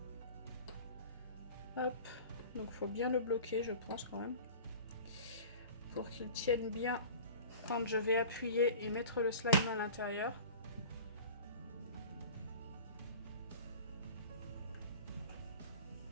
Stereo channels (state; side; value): inverted; both; correlation -0.39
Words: Hop. Donc, il faut bien le bloquer, je pense, quand même. Pour qu'il tienne bien quand je vais appuyer et mettre le slime à l'intérieur.